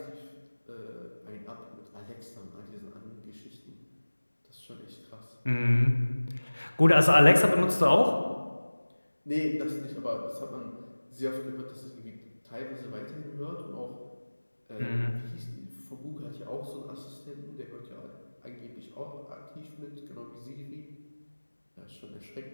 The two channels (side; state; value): both; inverted; correlation -1.00